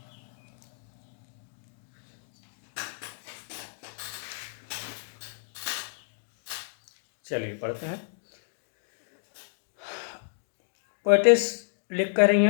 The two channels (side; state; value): right; silent; digital silence